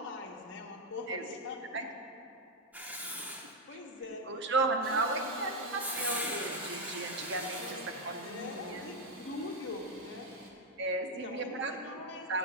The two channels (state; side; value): normal; both; correlation 0.03